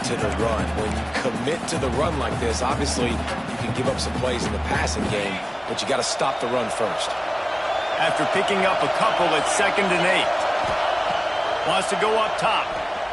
to the run. When you commit to the run like this, obviously you can give up some plays in the passing game, but you got to stop the run first. After picking up a couple at 2nd and 8. Wants to go up top.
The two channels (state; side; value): identical; both; correlation 1.00